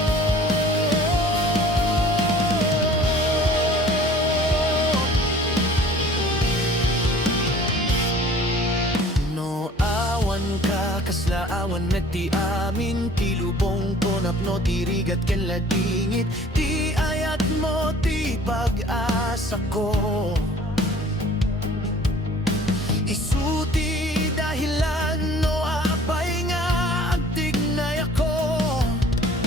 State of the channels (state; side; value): normal; both; correlation 0.50